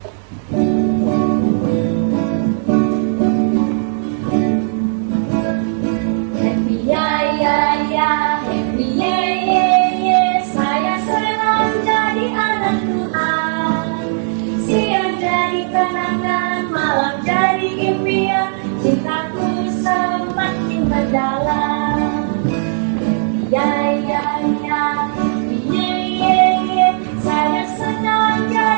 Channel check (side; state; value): left; silent; digital silence